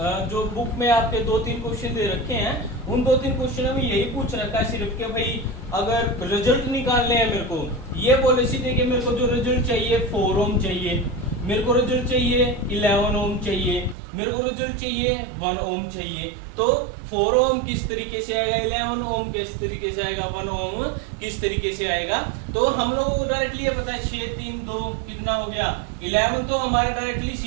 जो बुक में आपके 2-3 क्वेश्चन दे रखे हैं, उन 2-3 क्वेश्चनों में यही पूछ रखा है सिर्फ कि भाई अगर रिजल्ट निकालने हैं मेरे को, ये बोले सीधे कि मेरे को जो रिजल्ट चाहिए 4 ओम चाहिए, मेरे को रिजल्ट चाहिए 11 ओम चाहिए, मेरे को रिजल्ट चाहिए 1 ओम चाहिए। तो 4 ओम किस तरीके से आएगा, 11 ओम किस तरीके से आएगा, 1 ओम किस तरीके से आएगा। तो हम लोगों को डायरेक्टली ये पता है 6 3 2 कितना हो गया 11, तो हमारे डायरेक्टली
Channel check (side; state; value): left; drops out; at 14.0 s